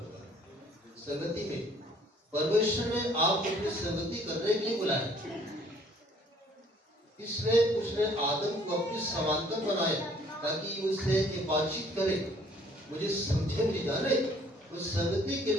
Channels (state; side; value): normal; both; correlation 0.59